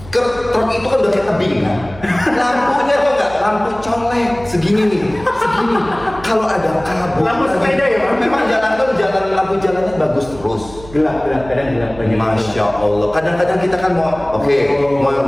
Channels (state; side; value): noise; right; hum, 18 dB below the sound